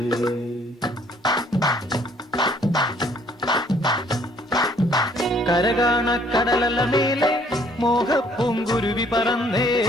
കരകാണ കടലലമേലെ മോഹപ്പൂങ്കുരുവി പറന്നേ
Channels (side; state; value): both; normal; correlation 0.61